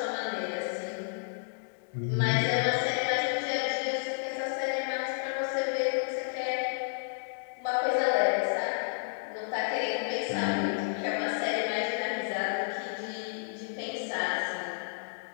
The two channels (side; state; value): right; silent; digital silence